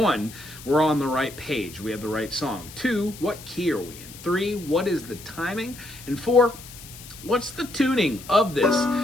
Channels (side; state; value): left; noise; hiss, 16 dB below the sound